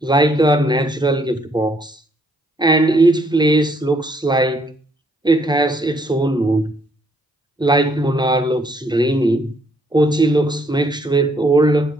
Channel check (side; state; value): both; normal; correlation 0.68